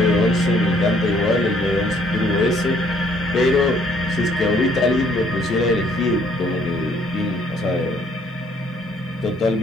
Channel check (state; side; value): normal; both; correlation 0.64